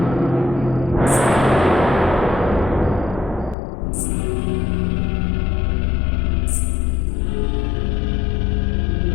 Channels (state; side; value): drops out; right; at 3.6 s